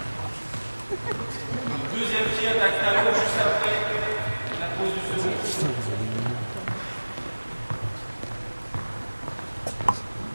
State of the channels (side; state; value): both; inverted; correlation -1.00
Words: Deuxième pied, attaque talon, juste après la pose du second.